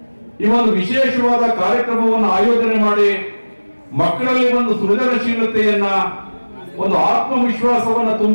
ಈ ಒಂದು ವಿಶೇಷವಾದ ಕಾರ್ಯಕ್ರಮವನ್ನು ಆಯೋಜನೆ ಮಾಡಿ ಮಕ್ಕಳಲ್ಲಿ ಒಂದು ಸೃಜನಶೀಲತೆಯನ್ನ ಒಂದು ಆತ್ಮವಿಶ್ವಾಸವನ್ನ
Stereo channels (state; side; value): inverted; both; correlation -1.00